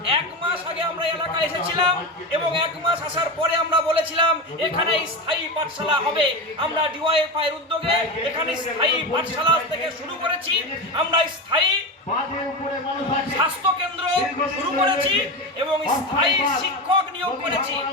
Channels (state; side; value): normal; both; correlation 0.20